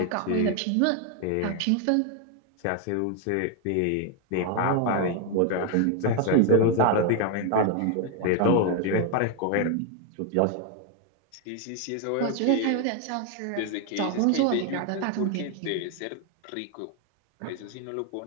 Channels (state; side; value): different; both; correlation 0.01